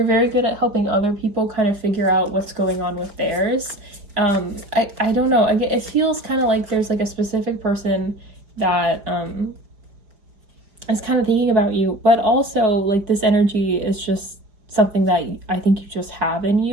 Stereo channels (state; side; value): late; left; 4.6 ms